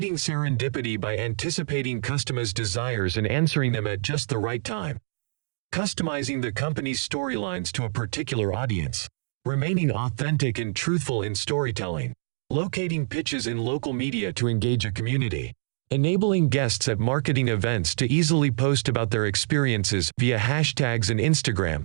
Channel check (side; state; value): left; silent; digital silence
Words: serendipity by anticipating customers' desires and answering them at just the right time. Customizing the company's storylines to a particular audience. Remaining authentic and truthful in storytelling. Locating pitches in local media to engage a community. enabling guests at marketing events to easily post about their experiences via hashtags and Instagram.